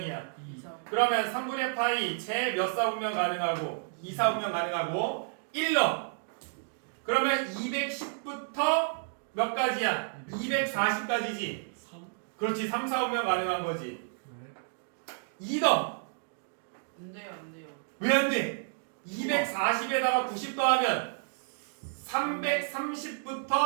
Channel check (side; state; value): left; silent; digital silence